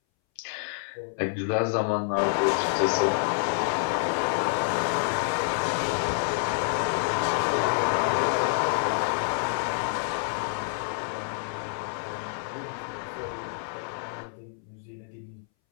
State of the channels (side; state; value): right; silent; 60 dB below the other